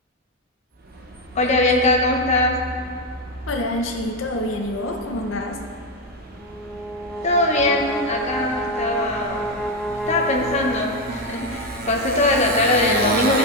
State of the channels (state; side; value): normal; both; correlation 0.08